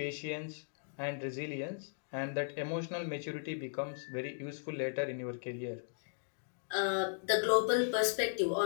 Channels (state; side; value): silent; right; digital silence